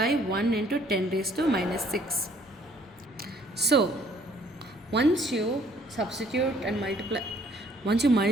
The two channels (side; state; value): both; normal; correlation 0.61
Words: 1 into 10 raised to minus 6. So once you substitute and